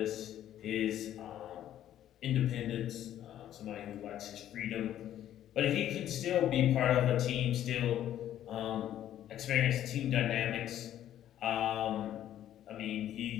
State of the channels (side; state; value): right; quieter; 11.6 dB